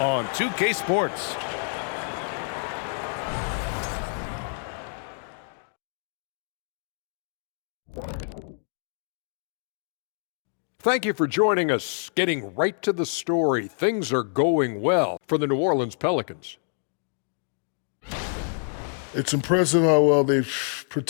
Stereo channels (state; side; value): silent; right; 60 dB below the other